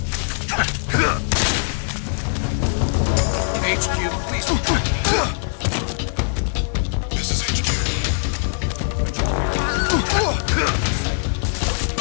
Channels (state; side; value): silent; right; 60 dB below the other